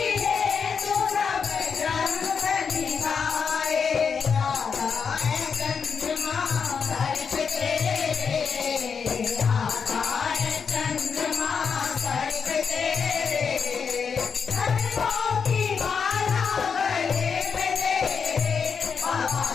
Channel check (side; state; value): right; quieter; 6.1 dB